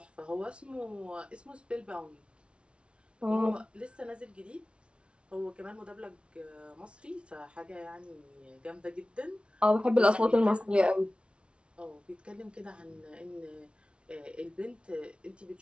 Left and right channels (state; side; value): late; left; 0.059 ms